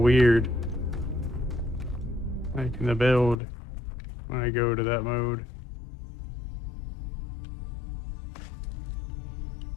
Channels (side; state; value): right; drops out; at 3.4 s